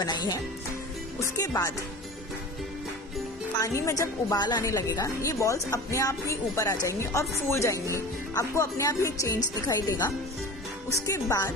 है। उसके बाद पानी में जब उबाल आने लगेगा, ये बॉल्स अपने आप ही ऊपर आ जाएंगी और फूल जाएंगी। आपको अपने आप ही चेंज दिखाई देगा। उसके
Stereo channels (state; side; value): normal; both; correlation 0.36